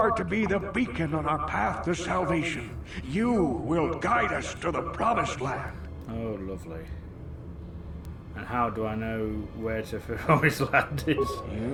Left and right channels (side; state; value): both; identical; correlation 1.00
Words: to be the beacon on our path to salvation. You will guide us to the promised land. Oh, lovely. And how do I know where to promised land is?